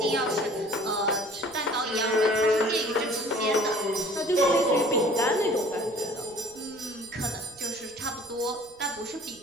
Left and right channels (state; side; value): noise; right; rumble, 27 dB below the sound